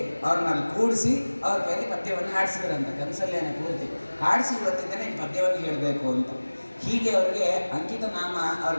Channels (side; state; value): both; inverted; correlation -1.00